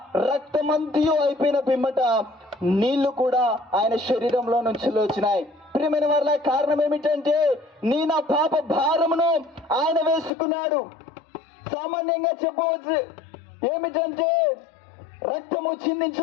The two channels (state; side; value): drops out; right; at 10.3 s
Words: రక్తమంతయు అయిపోయిన పిమ్మట నీళ్లు కూడా ఆయన శరీరంలో నుంచి వచ్చినాయి. ప్రియమైన వారిలో కారణం ఏమిటంటే నా పాప భారమును ఆయన వేసుకున్నాడు. సామాన్యంగా చెప్పవచ్చు ఏమిటంటే రక్తము